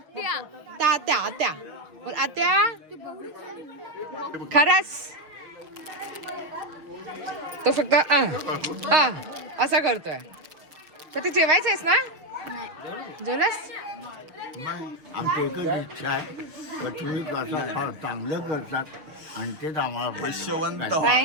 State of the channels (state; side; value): late; left; 6.4 ms